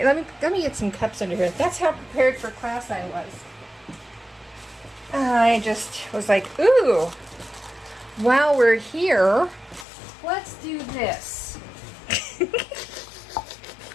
Let me get some cups under here. That's how prepared for class I was. I just was like, ooh, while we're here, let's do this.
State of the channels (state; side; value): drops out; right; at 9.9 s